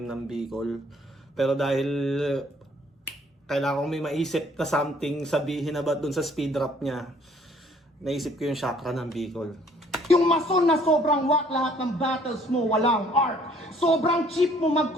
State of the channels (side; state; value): both; normal; correlation 0.60